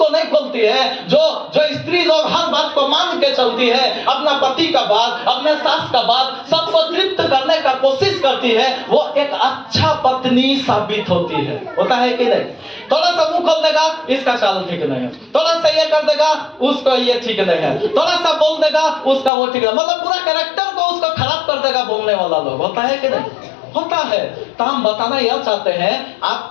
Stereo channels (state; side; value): drops out; right; at 19.3 s